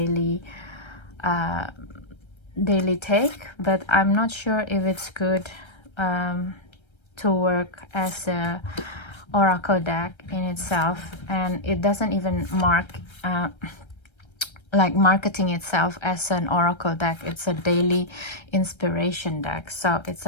take, but I'm not sure if it's good to work as a oracle deck in itself. And it doesn't even like marketing itself as an oracle deck. It's a daily inspiration deck, so it's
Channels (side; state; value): right; late; 1.3 ms